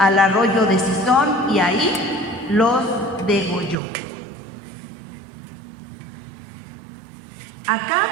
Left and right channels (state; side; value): drops out; left; at 3.8 s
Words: arroyo de Cisón, y ahí los degolló. Acab